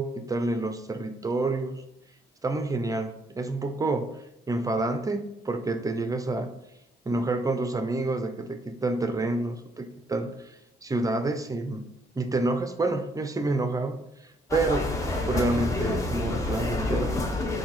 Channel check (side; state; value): both; normal; correlation 0.70